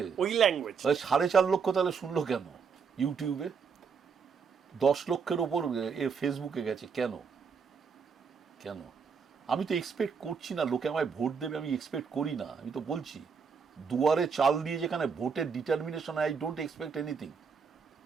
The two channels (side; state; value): left; quieter; 5.9 dB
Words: ওই ল্যাঙ্গুয়েজ। 4.5 লক্ষ তাহলে শুনলো কেন ইউটিউবে? 10 লক্ষের ওপর ফেসবুকে গেছে কেন? কেন? আমি তো এক্সপেক্ট করছি না লোকে আমায় ভোট দেবে, আমি এক্সপেক্ট করি না। আমি তো বলছি, দুয়ারে চাল দিয়ে যেখানে ভোটের determination, I don't expect anything.